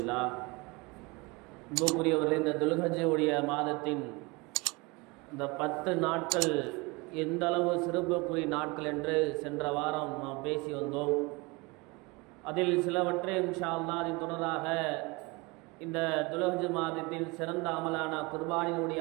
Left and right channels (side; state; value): left; quieter; 26.0 dB